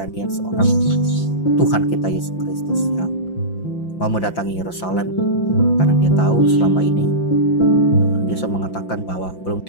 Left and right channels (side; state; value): right; late; 5.8 ms